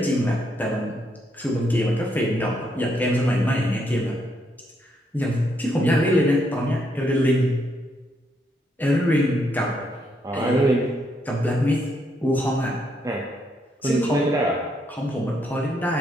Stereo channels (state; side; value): normal; both; correlation 0.76